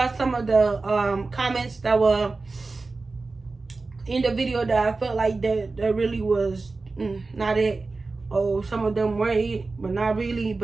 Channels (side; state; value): left; quieter; 3.7 dB